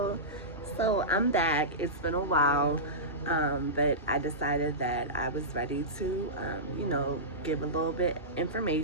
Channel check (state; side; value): normal; both; correlation -0.18